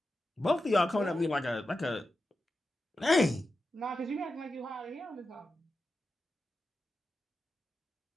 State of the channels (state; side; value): normal; both; correlation 0.90